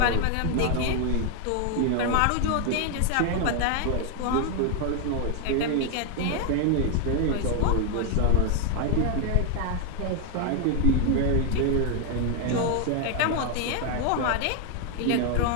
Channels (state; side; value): different; both; correlation 0.00